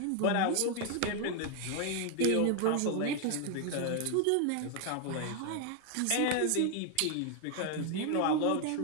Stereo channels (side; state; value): both; different; correlation 0.00